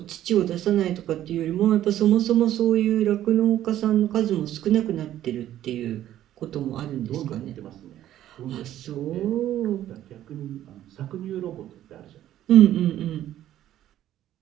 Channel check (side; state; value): left; quieter; 12.4 dB